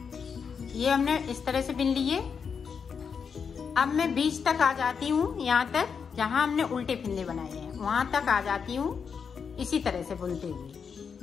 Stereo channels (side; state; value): right; quieter; 6.3 dB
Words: ये हमने इस तरह से बिन लिए। अब मैं बीच तक आ जाती हूँ, यहाँ तक जहाँ हमने उल्टे फिंदे बनाए हैं वहां तक आ जाती हूँ इसी तरह से बुनते